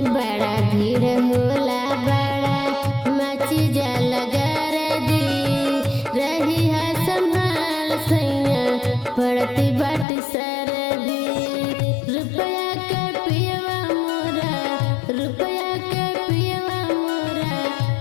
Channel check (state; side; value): drops out; right; at 10.1 s